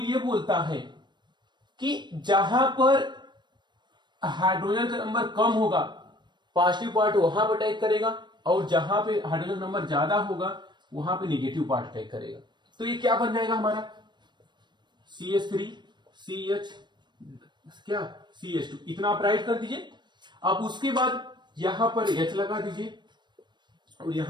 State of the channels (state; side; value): late; left; 0.22 ms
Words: ये बोलता है कि जहां पर हाइड्रोजन का नंबर कम होगा पॉजिटिव पार्ट वहां पर अटैक करेगा, और जहां पे हाइड्रोजन का नंबर ज्यादा होगा वहां पे नेगेटिव पार्ट अटैक करेगा। तो ये क्या बन जाएगा हमारा, CH3 CH क्या CH2, इतना आप राइट कर दीजिए। अब उसके बाद यहां पर H लगा दीजिए और